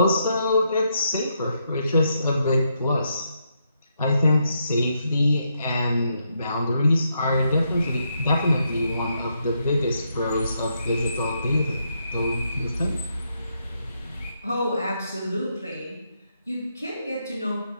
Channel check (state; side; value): inverted; both; correlation -0.79